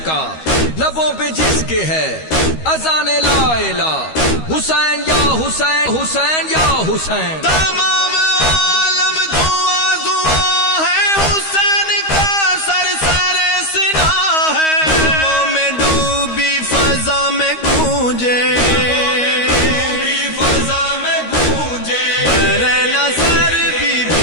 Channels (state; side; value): late; right; 13 ms